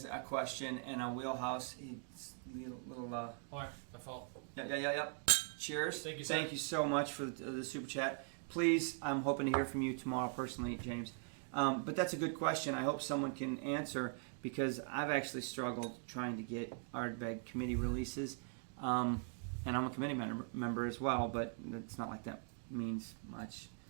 a question and a wheelhouse. He's a little. All right, my fault. Yeah. Cheers. Thank you, sir. Thank you so much for the super chat. Please, I'm hoping to hear from you tomorrow personally, James. But that's a good question. I hope someone can answer, because I've actually struggled trying to get Ardbeg committee releases. And I'm a committee member as well, but it's not like that means much.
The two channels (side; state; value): left; silent; 50 dB below the other